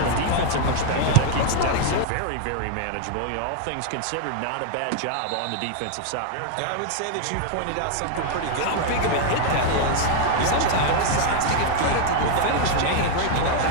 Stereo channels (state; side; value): different; both; correlation 0.00